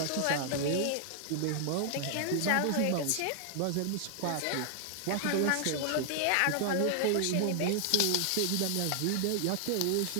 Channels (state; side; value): different; both; correlation 0.00